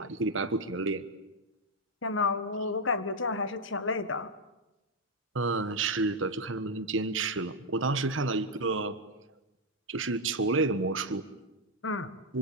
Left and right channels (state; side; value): normal; both; correlation 0.02